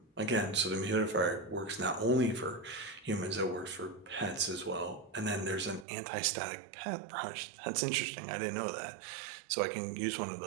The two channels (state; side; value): drops out; left; at 5.9 s